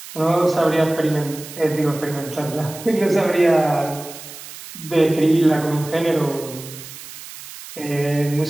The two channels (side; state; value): right; noise; hiss, 14 dB below the sound